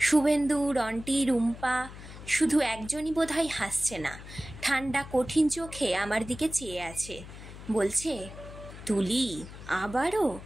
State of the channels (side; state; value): left; noise; hum, 14 dB below the sound